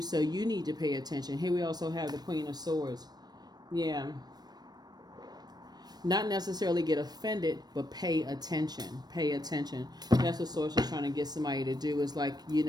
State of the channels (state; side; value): late; left; 0.19 ms